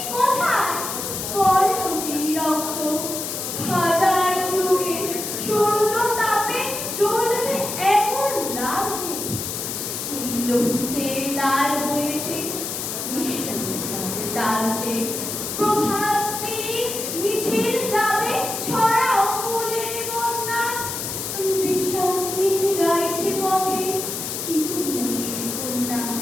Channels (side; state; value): left; noise; hiss, 5 dB below the sound